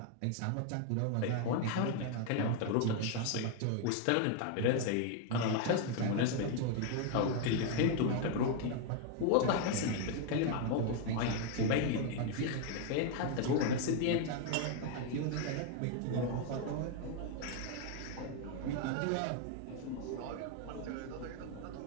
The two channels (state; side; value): different; both; correlation 0.01